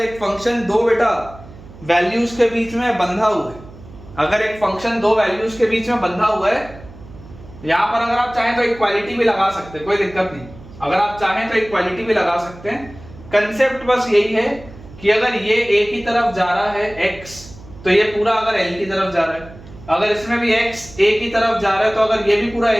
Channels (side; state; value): right; noise; hum, 19 dB below the sound